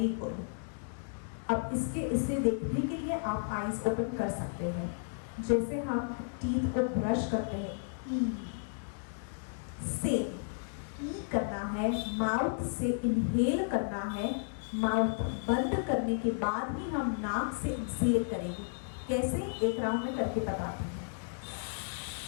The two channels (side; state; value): right; silent; digital silence